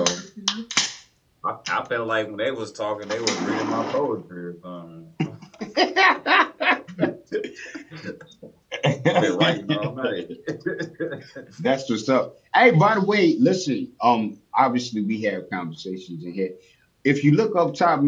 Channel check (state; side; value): identical; both; correlation 1.00